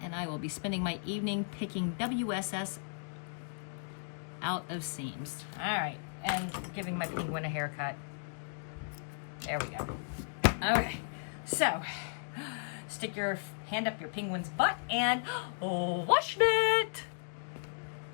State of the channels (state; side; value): silent; right; digital silence